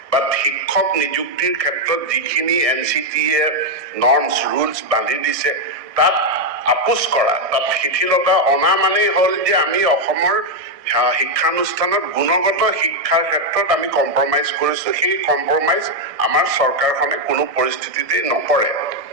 বাট শিক্ষক নিযুক্তিৰ ক্ষেত্ৰত যিখিনি NCTয়ে নৰ্মছ ৰুলছ বান্ধি দিছে তাত আপোচ কৰা, তাত শিথিলতা অনা মানেই হ'ল যে আমি অসমৰ শিক্ষানুষ্ঠানত গুণগত শিক্ষাৰ ক্ষেত্ৰত আমি কম্প্ৰমাইজ কৰিছোঁ। সেই কম্প্ৰমাইজ আমাৰ চৰকাৰখনে কোনো পৰিস্থিতিতে নকৰে।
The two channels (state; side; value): late; left; 1.6 ms